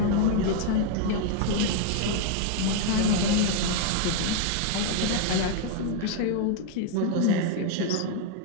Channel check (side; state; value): both; different; correlation 0.00